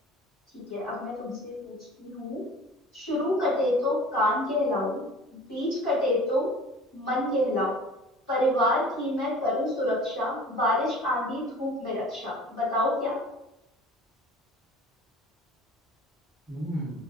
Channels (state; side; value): normal; both; correlation 0.44